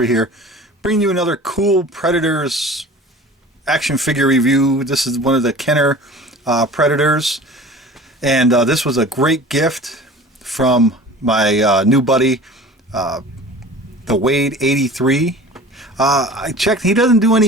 here, bringing you another cool Predators action figure review. This is one of the Kenner Predators, and this was a great gift from my new buddy, the Wade 83. I checked; he doesn't do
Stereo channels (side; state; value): both; normal; correlation 0.41